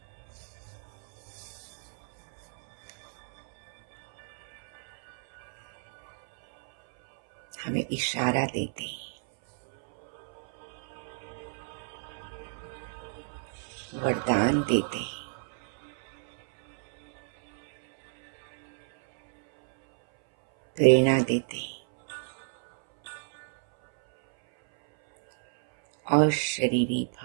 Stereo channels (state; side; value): silent; left; 58 dB below the other